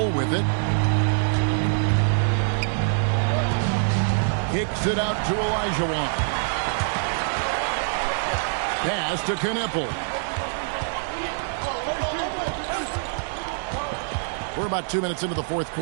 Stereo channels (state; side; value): silent; left; digital silence